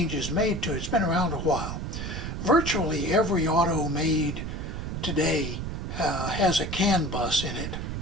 made to it. It's been around a while. Virtually every auto made today has a CAN bus in it,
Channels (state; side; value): noise; right; rumble, 5 dB below the sound